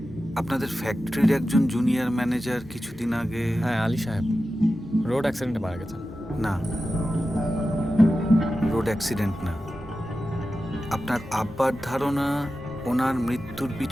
আপনাদের ফ্যাক্টরির একজন জুনিয়র ম্যানেজার কিছুদিন আগে। হ্যাঁ, আলী সাহেব রোড অ্যাক্সিডেন্টে মারা গেছেন। না, রোড অ্যাক্সিডেন্ট না। আপনার আব্বার ধারণা ওনার মৃত্যুর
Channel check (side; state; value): both; normal; correlation 0.93